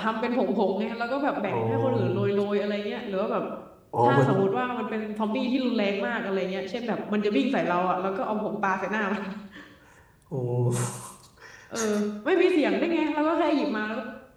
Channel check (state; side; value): identical; both; correlation 1.00